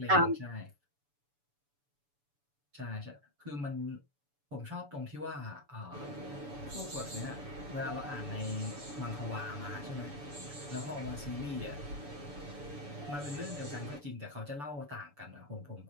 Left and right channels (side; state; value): left; late; 7.0 ms